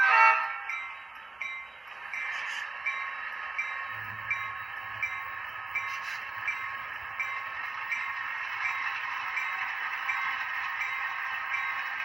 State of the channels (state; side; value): quieter; left; 3.2 dB